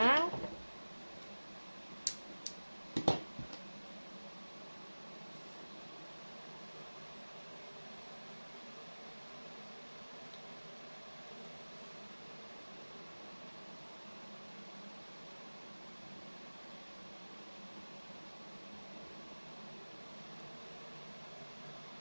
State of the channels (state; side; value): inverted; both; correlation -1.00